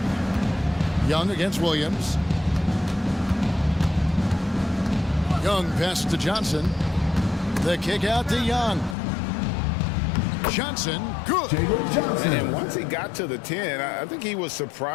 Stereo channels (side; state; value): right; drops out; at 9.0 s